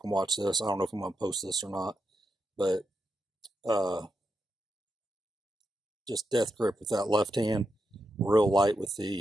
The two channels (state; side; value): normal; both; correlation 0.85